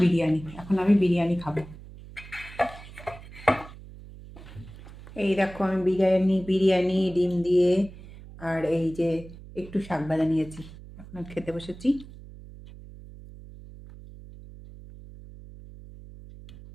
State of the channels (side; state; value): right; noise; hum, 17 dB below the sound